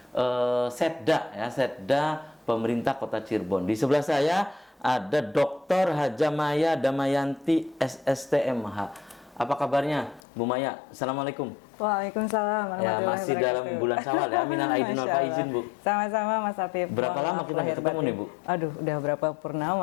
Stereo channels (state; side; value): drops out; right; at 10.2 s